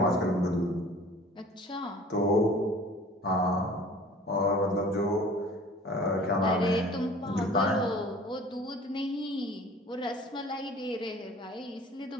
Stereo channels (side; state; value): both; normal; correlation 0.47